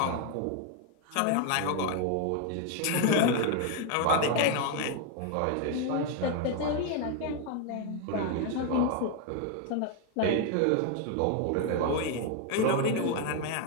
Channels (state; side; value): different; both; correlation 0.01